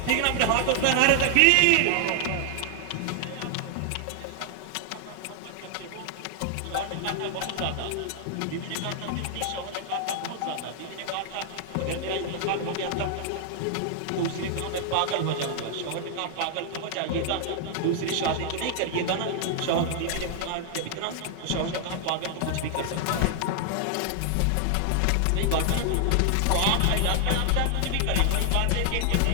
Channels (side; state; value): both; different; correlation 0.00